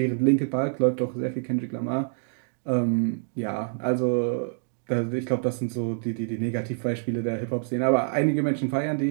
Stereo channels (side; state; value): left; silent; digital silence